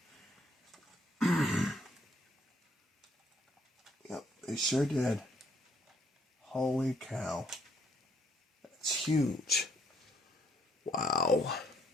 Yep, they sure did. Holy cow. That's huge. Wow.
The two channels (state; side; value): normal; both; correlation 0.69